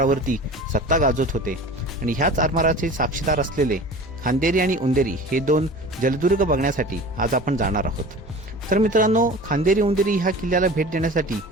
सत्ता गाजवत होते आणि ह्याच आरमाराचे साक्षीदार असलेले खांदेरी आणि उंदेरी हे दोन जलदुर्ग बघण्यासाठी आज आपण जाणार आहोत। तर मित्रांनो, खांदेरी उंदेरी ह्या किल्ल्याला भेट देण्यासाठी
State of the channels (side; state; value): both; normal; correlation 0.38